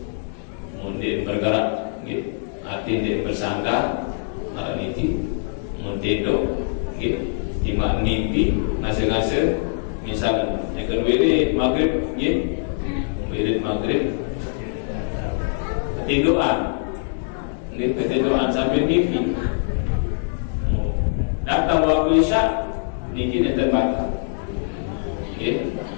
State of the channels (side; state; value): right; silent; digital silence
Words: mungkin bergerak, nggih, arti dia bersandar, arah niti, mungkin nggih, timak mimpi, ngase-ngase, misalnya, yang kedua ini maghrib, nggih, wirid maghrib. Ketiduran sambil mimpi. Datang waktu isya, niki nanti batal.